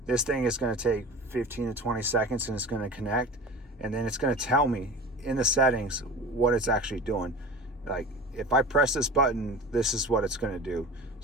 this thing is going to take 15 to 20 seconds and it's going to connect. And then it's going to tell me in the settings what it's actually doing. Like if I press this button, this is what it's going to do.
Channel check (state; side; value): normal; both; correlation 0.34